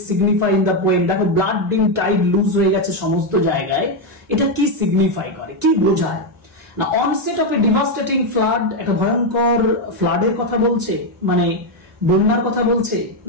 signify in the poem. দেখো ব্লাড ডিমড টাইড লুজ হয়ে গেছে সমস্ত জায়গায়, এটা কি সিগনিফাই করে, কি বোঝায়? না onset of A devastating flood, একটা ভয়ঙ্কর ফ্লাডের কথা বলছে, মানে বন্যার কথা বলছে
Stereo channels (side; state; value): both; normal; correlation 0.04